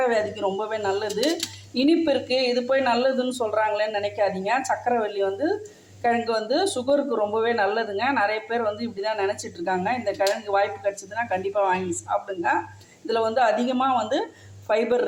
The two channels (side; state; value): both; identical; correlation 1.00